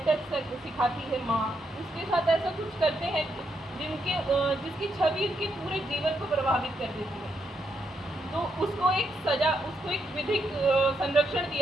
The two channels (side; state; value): both; normal; correlation 0.79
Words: टच सिखाती है माँ, उसके साथ ऐसा कुछ करते हैं जिसकी छवि उसके पूरे जीवन को प्रभावित कर देती है। तो उसको एक सजा, उसको एक विधिक संरक्षण